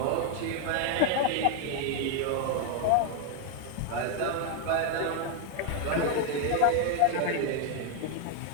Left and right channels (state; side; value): different; both; correlation 0.00